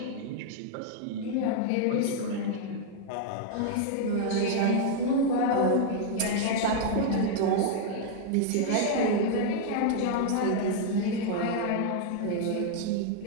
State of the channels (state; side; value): different; both; correlation 0.00